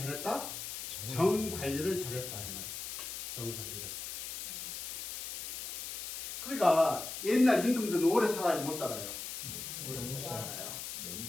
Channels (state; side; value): noise; left; hiss, 6 dB below the sound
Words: 정 관리를 잘했다. 이 말. 정 관리를. 그러니까 옛날 임금들은 오래 살아야 못 살아요. 오래 못 살아요.